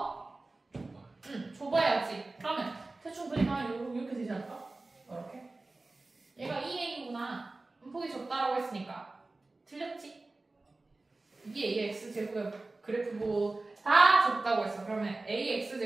좁아야지. 그러면 대충 그리면 이렇게 되지 않을까? 이렇게. 얘가 2a구나. 폭이 좁다라고 했으니까 틀렸지? 이게 ax제곱의 그래프고 다 좁다고 했어. 그러면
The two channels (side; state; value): left; quieter; 3.2 dB